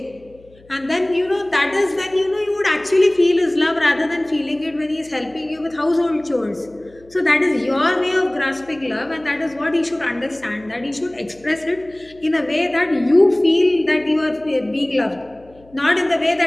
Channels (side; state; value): left; noise; hum, 27 dB below the sound